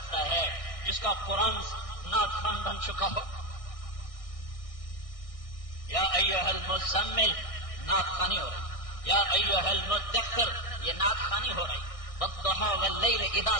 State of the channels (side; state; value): right; late; 1.6 ms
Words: ہے جس کا قرآن نعت خوان بن چکا ہو؟ یا ایھا المزمل نعت خوانی ہو رہی، یا ایھا المدثر یہ نعت خوانی ہو رہی، والضحى واللیل اذا